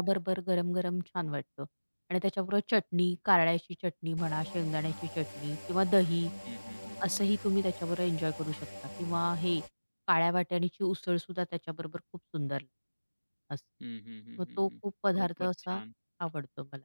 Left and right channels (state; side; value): inverted; both; correlation -1.00